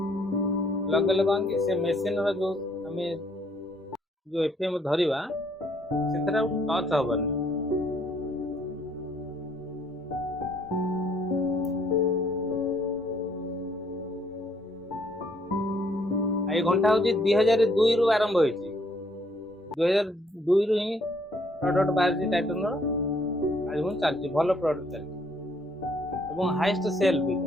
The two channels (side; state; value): both; normal; correlation 0.66